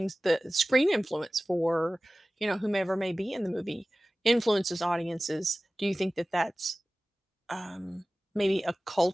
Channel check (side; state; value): both; normal; correlation 0.97